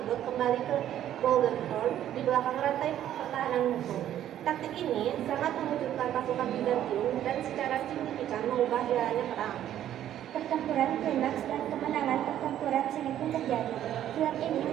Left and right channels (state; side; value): quieter; left; 11.4 dB